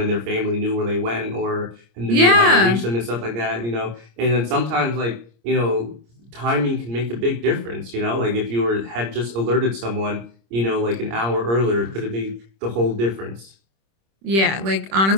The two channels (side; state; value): left; late; 26 ms